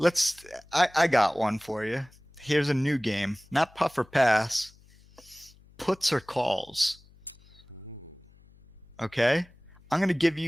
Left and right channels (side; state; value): left; noise; hum, 27 dB below the sound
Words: I got one for you. Here's a new game. Not puff or pass. Puts or calls. Okay, I'm gonna give